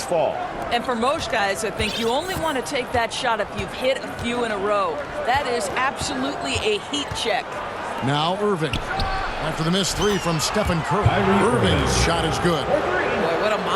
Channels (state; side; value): identical; both; correlation 1.00